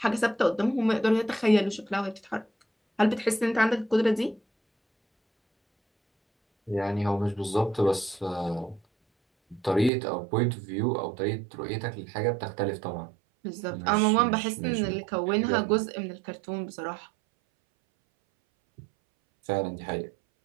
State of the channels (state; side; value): drops out; left; at 9.9 s